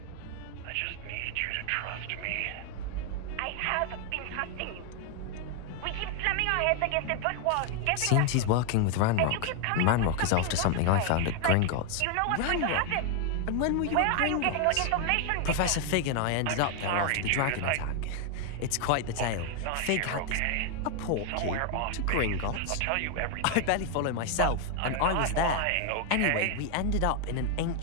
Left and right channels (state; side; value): different; both; correlation 0.00